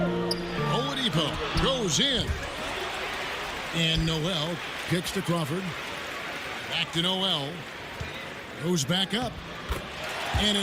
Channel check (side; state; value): both; identical; correlation 1.00